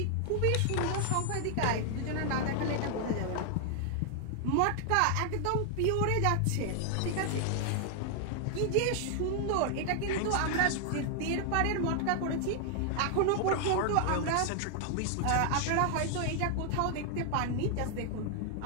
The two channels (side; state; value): both; different; correlation 0.00